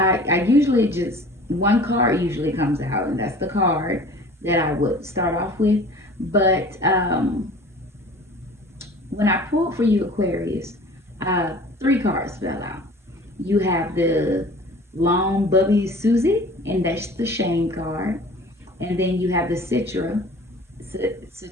I usually just, one card usually comes out, and that's the card that I would start off with. But when I pulled for you, Aquarius, uh, three cards fell out. You have the long Bubby Susie, and that's the shame card. And then you have the Satira,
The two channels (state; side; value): normal; both; correlation 0.45